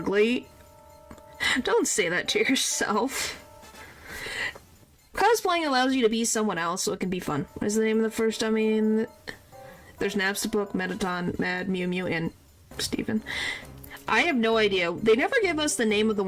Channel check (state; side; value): identical; both; correlation 1.00